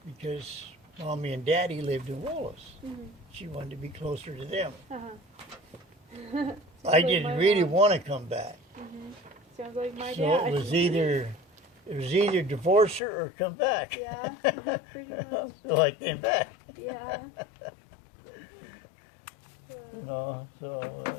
because Mommy and Daddy lived in Wallace. Mm-hmm. She wanted to be closer to them. Uh-huh. I didn't really want to come back. Mm-hmm. Sounds like my So dad. it was either divorce her or come back. Yeah, pretty much. So I came back. Yeah. You know, so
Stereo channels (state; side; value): drops out; right; at 13.0 s